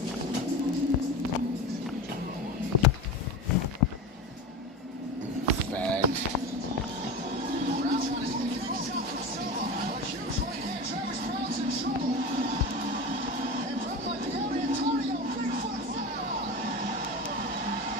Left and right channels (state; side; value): normal; both; correlation 0.26